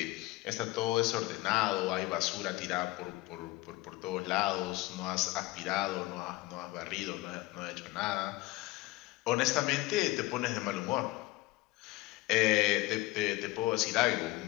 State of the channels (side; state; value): right; quieter; 19.7 dB